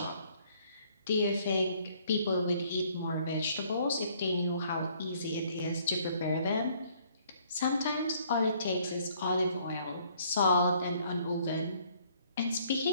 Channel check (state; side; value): inverted; both; correlation -0.63